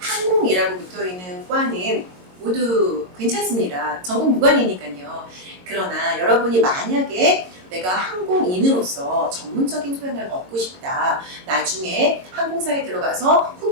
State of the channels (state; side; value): late; left; 22 ms